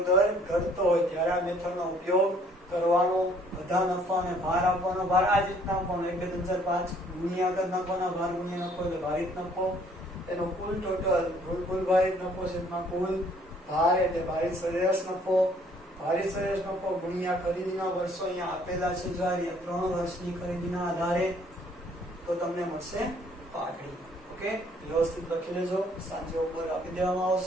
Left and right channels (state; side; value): normal; both; correlation 0.61